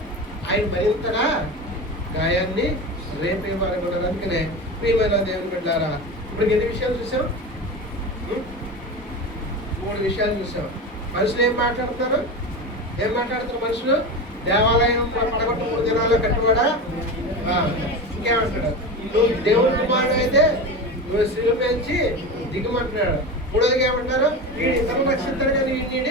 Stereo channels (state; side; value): normal; both; correlation 0.25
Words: ఆయన మరింతగా గాయాన్ని రేపే వారు కూడా. అందుకనే ప్రియమైన దేవుని బిడ్డలారా, ఇప్పుడు ఎన్ని విషయాలు చూసాం, 3 విషయాలు చూసాం. మనుషులు ఏం మాట్లాడతారు మనుషులు? దేవాలయం పడగొట్ట 3 దినాల్లో కట్టుబడా. ఇంకేమంటాడు, నువ్వు దేవుని కుమారుడు అయితే నువ్వు శిలువ పెంచి దిగమంటున్నాడు. 3వదిగా ఏమంటారు, వీడు ఇతరులు రక్షిస్తాడు కానీ